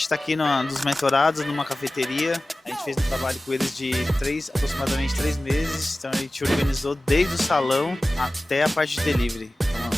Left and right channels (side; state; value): both; normal; correlation 0.96